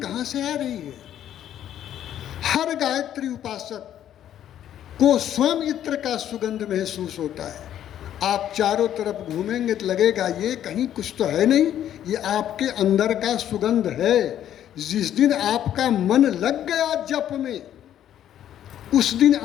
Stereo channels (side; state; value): right; quieter; 10.9 dB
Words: कहाँ से आ रही है। हर गायत्री उपासक को स्वयं इत्र का सुगंध महसूस होता है। आप चारों तरफ घूमेंगे तो लगेगा ये कहीं कुछ तो है नहीं, ये आपके अंदर का सुगंध है। जिस दिन आपका मन लग गया जप में, उस दिन